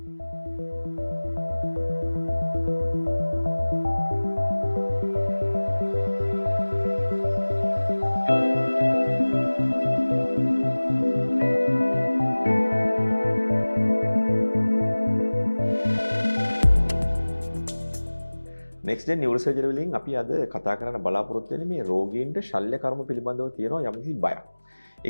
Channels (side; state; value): both; inverted; correlation -1.00